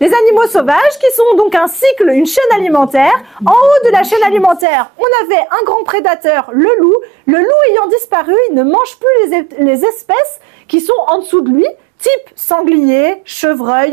Les animaux sauvages qui sont donc un cycle, une chaîne alimentaire. En haut de la chaîne alimentaire, on avait un grand prédateur, le loup. Le loup ayant disparu, il ne mange plus les espèces qui sont en dessous de lui, type sanglier,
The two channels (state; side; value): drops out; left; at 4.7 s